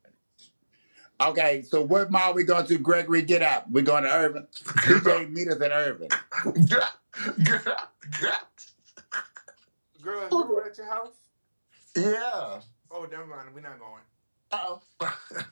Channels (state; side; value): inverted; both; correlation -1.00